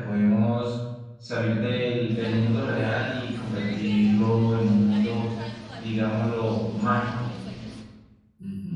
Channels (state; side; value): identical; both; correlation 1.00